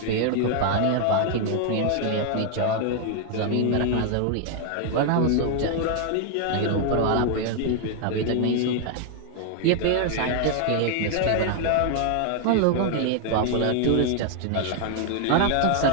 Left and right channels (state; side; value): different; both; correlation 0.00